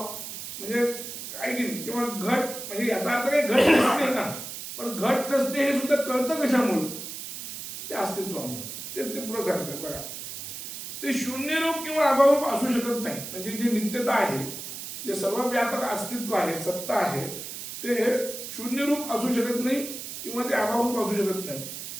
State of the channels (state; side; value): noise; right; hiss, 8 dB below the sound